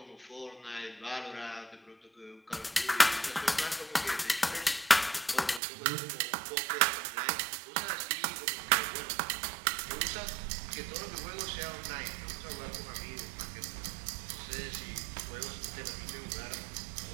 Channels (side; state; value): left; drops out; at 5.6 s